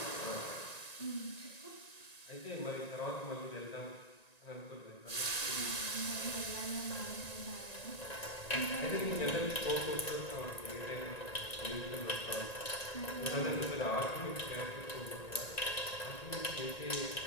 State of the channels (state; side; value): late; right; 1.9 ms